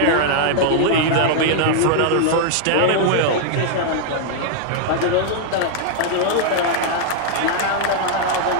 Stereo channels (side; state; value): both; different; correlation -0.01